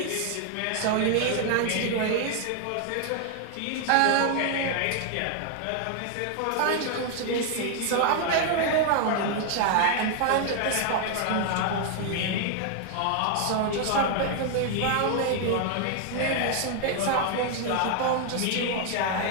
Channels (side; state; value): both; different; correlation 0.00